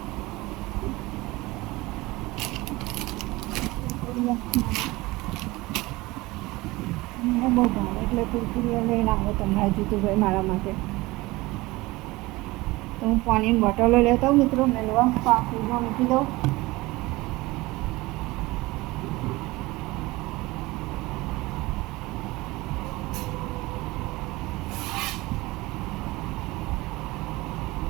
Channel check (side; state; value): left; quieter; 20.9 dB